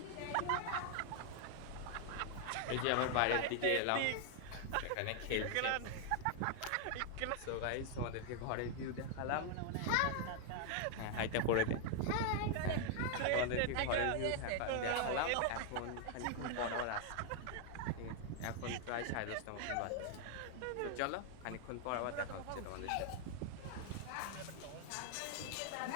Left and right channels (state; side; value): different; both; correlation 0.00